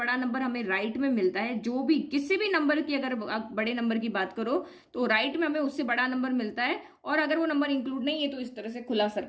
नंबर हमें राइट में मिलता है। जो भी किसी भी नंबर की अगर आप बड़े नंबर की बात करो तो राइट में हमें उससे बड़ा नंबर मिलता है, और अगर वो नंबर इंक्लूड नहीं है तो इस तरह से खुला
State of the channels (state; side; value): identical; both; correlation 1.00